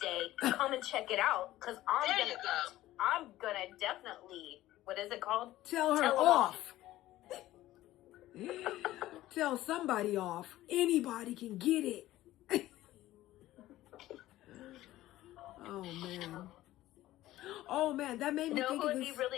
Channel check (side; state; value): right; quieter; 15.4 dB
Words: come and check it out, because there you go. I'm gonna definitely, what is it called? Tell her Tell 'em off. Tell somebody off. Anybody can get it. Oh man, that made me No, think who of would be this.